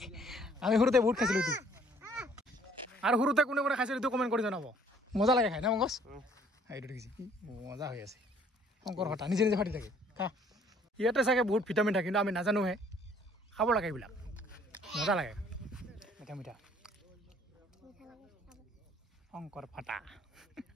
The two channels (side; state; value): both; normal; correlation 0.59